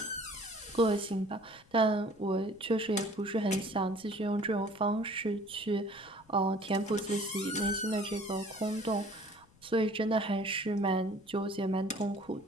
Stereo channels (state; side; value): noise; left; rumble, 28 dB below the sound